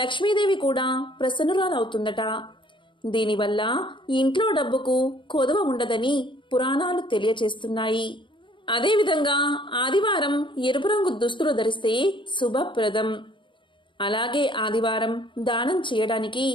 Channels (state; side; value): late; right; 0.24 ms